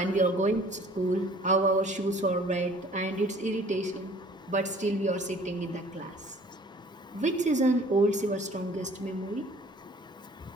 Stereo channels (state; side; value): normal; both; correlation 0.52